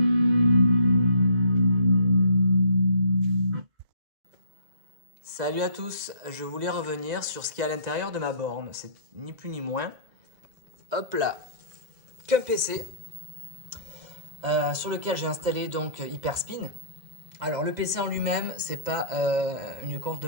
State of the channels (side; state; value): left; late; 2.0 ms